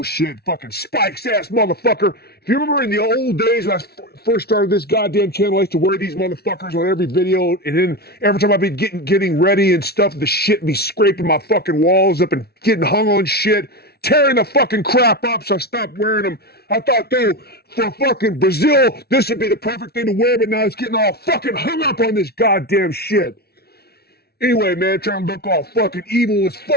fucking spikes ass motherfucker. If you remember in the old days when I first started this goddamn channel, I used to wear these motherfuckers on every video, and then every time I'd be getting ready and stuff, the shit be scraping my fucking walls up and getting hung on shit, tearing the fucking crap up, so I stopped wearing them. I thought, dude, for fucking Brazil, this would be the perfect thing to wear, but now it's getting all fucking hung up on this goddamn shit. Anyway, man, trying to look all fucking evil as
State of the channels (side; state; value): right; late; 0.46 ms